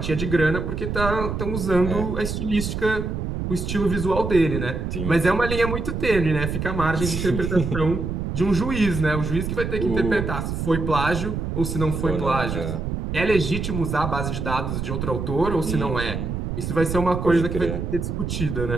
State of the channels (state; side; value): noise; right; rumble, 3 dB below the sound